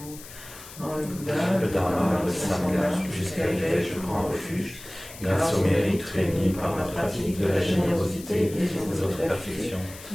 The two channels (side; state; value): left; noise; hiss, 16 dB below the sound